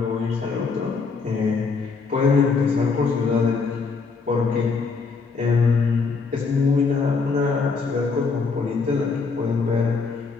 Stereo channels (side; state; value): right; quieter; 4.7 dB